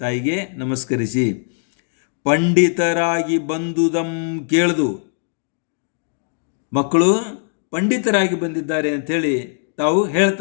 ತಾಯಿಗೆ ನಮಸ್ಕರಿಸಿ, ಪಂಡಿತರಾಗಿ ಬಂದುದಂ ಕೇಳ್ದು, ಮಕ್ಕಳು ಪಂಡಿತರಾಗಿ ಬಂದಿದ್ದಾರೆ ಅಂಥೇಳಿ ತಾವು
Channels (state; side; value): silent; right; 66 dB below the other